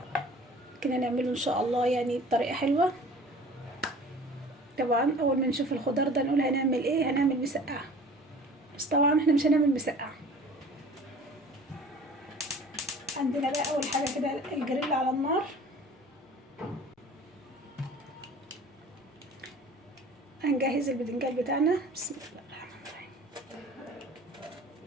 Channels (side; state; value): both; normal; correlation 0.46